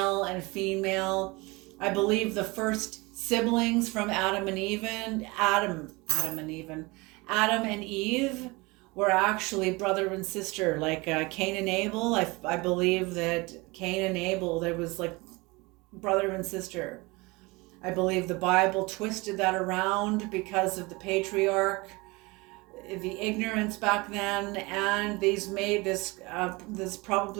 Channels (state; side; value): quieter; left; 24.7 dB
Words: and female. I believe the first siblings from Adam and Eve were actually brother and sister, like Cain and Abel. I believe that Cain and Abel, there was like brother and sister. I believe the Bible twisted that around because of the patriarch, the ignorance back then, and these made this